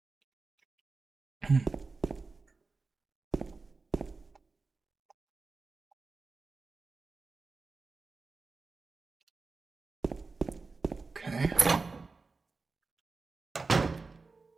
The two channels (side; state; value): left; quieter; 4.0 dB